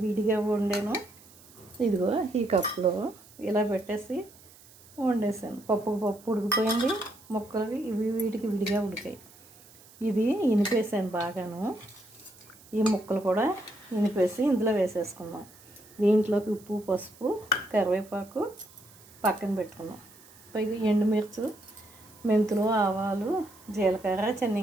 విడిగా వండాను. ఇదిగో ఈ కప్పులో ఇలా పెట్టేసి వండేసాను. పప్పు ఉడికిపోయింది. ముక్కలు వీటికి విడిగా ఉడికాయి. ఇది ఇనిపేసాను బాగాను. ఈ ముక్కలు కూడా ఇనిపేసి ఇందులో వేసేసుకున్నాం. దీంట్లోకి ఉప్పు, పసుపు, కరివేపాకు పక్కన పెట్టుకున్నాం. పైగా ఎండుమిర్చి, మెంతులు, ఆవాలు, జీలకర్ర,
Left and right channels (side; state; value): right; noise; hiss, 24 dB below the sound